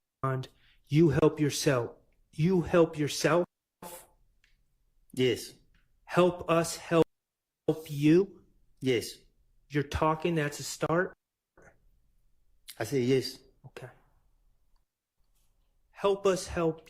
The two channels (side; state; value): both; identical; correlation 1.00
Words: you help yourself? You help yourself? Yes. Help us help you? Yes. You're talking, that's a start? I said yes. Okay. Help us help